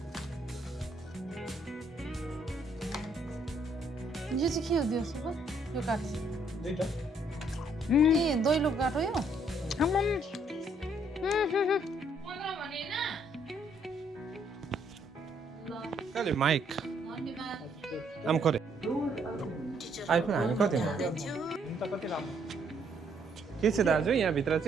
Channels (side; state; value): both; normal; correlation 0.68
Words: यो चाहिँ के हो दियोस् यो काठ दुईटा ए दैलो काठ हो यो कहिले माइक आम करे आइफोन हामी कति कति राम्रो के छ दाजु यहाँभित्र